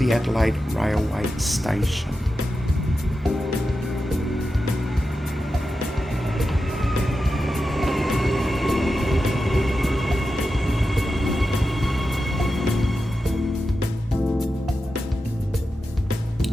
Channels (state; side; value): normal; both; correlation 0.91